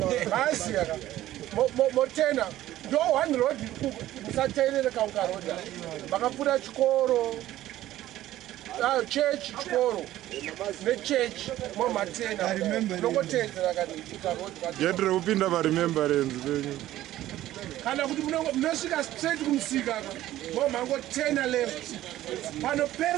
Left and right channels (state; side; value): quieter; left; 14.3 dB